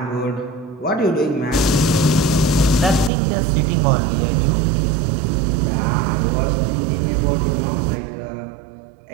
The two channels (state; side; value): drops out; left; at 3.1 s